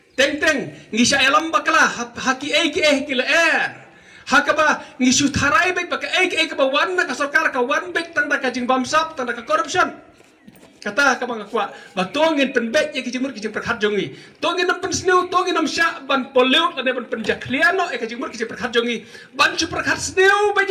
teng ngisa elam bakala haki ki la hakaba ngisu tharai bet baka ka ba wan na ka sarkar ka wan bet tang da kajing bamsap tang da ka corruption kata ka bang kwa ba tongin pen bet ki jimur ki jim prakhat jongi tongin nam pen sneu tongin nam sha ban pollute la ne ban pen jakliano ka jimur ki jim prakhat jongi ban chu prakhat sneu ba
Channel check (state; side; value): identical; both; correlation 1.00